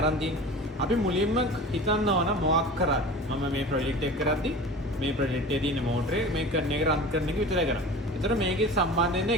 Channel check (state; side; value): normal; both; correlation 0.37